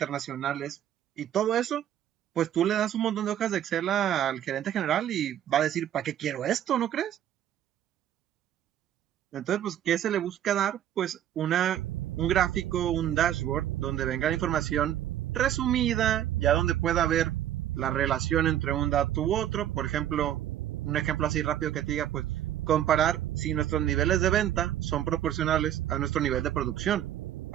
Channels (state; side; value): quieter; left; 11.2 dB